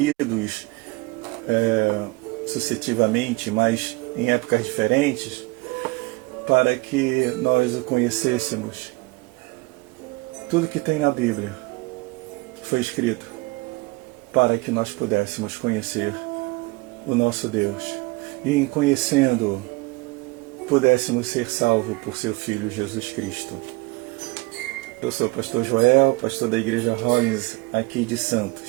sucessivamente, mas em épocas diferentes, para que nós o conhecêssemos. Tudo que tem na Bíblia foi escrito para que nós pudéssemos conhecer o nosso Deus e, em conhecendo-o, pudéssemos ser salvos por seu Filho Jesus Cristo. Eu sou o pastor Joel, pastor da Igreja Rollins aqui de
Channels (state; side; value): quieter; left; 24.5 dB